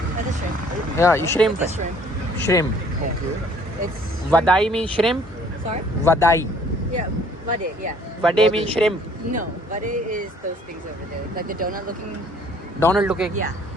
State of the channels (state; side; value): normal; both; correlation 0.57